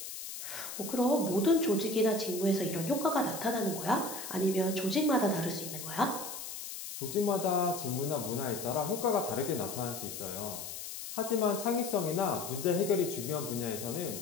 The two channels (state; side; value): noise; left; hiss, 8 dB below the sound